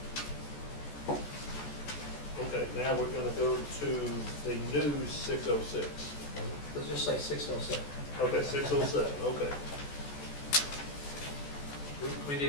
Okay, now we're going to go to the new 606. let's just say 607. Okay, 607, okay. We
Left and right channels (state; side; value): late; right; 14 ms